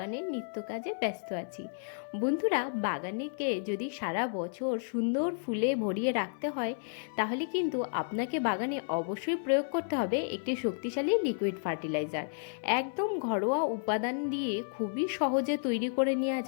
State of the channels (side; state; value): right; silent; 56 dB below the other